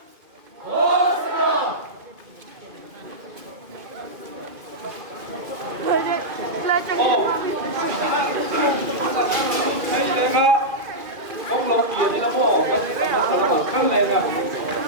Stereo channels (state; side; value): late; left; 2.3 ms